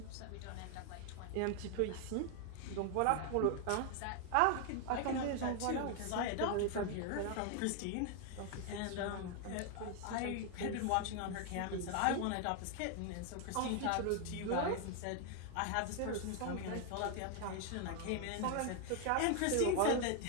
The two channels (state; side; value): different; both; correlation 0.00